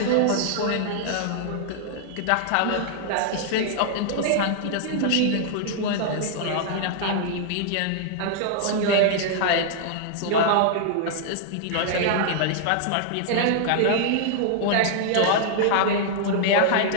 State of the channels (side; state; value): both; different; correlation -0.01